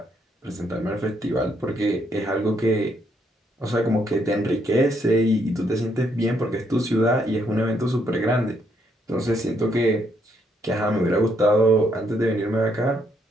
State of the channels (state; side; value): normal; both; correlation 0.73